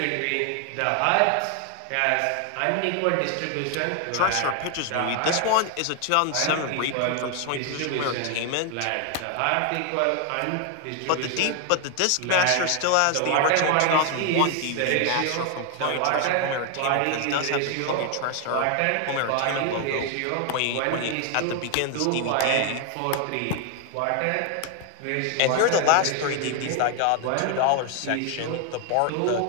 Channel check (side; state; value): both; different; correlation 0.01